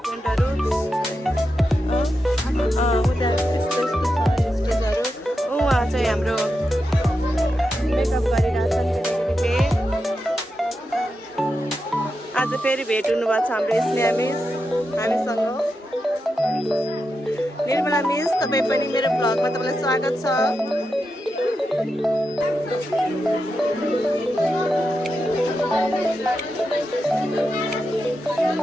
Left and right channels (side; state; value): both; normal; correlation 0.87